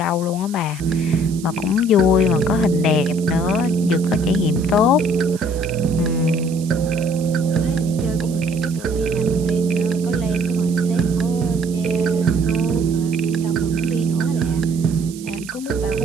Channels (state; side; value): noise; right; hiss, 18 dB below the sound